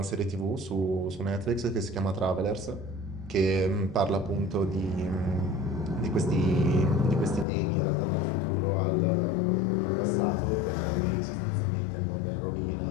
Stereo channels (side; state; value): right; drops out; at 7.5 s